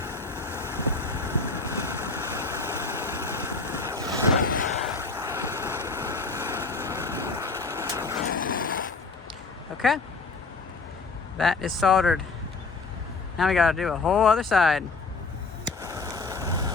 Okay, that is soldered. Now we gotta do a whole other side.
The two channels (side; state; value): right; quieter; 4.0 dB